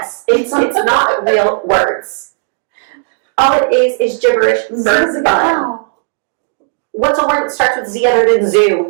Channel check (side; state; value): left; silent; 64 dB below the other